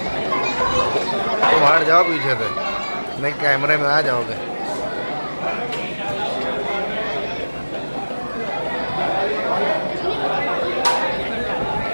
तुम हट जाओ पीछे से, नहीं कैमरे में आ जाओगे।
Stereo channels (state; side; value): inverted; both; correlation -1.00